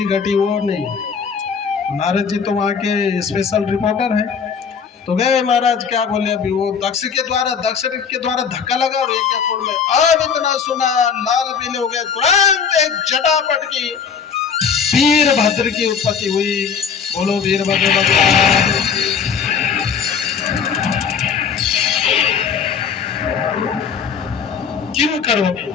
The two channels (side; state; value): right; quieter; 6.6 dB